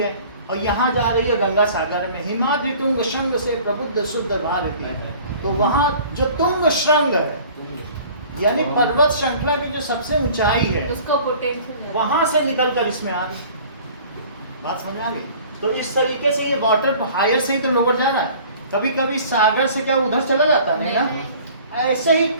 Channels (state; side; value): inverted; both; correlation -0.48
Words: है और यहाँ जा रही है गंगा सागर में, हिमाद्रि तुंग श्रृंग से प्रबुद्ध शुद्ध भारती है। तो वहाँ जो तुंग श्रृंग है यानी पर्वत श्रृंखला की जो सबसे ऊंचाई है, उसका पोटेंशियल वहां से निकल कर इसमें आ गई। बात समझ में आ गई? तो इस तरीके से ये वाटर हायर से ही तो लोअर जा रहा है। कभी कभी सागर से क्या उधर चला जाता है ना? ऐसे ही